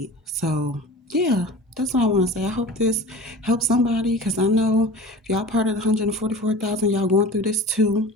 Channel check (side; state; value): both; normal; correlation 0.37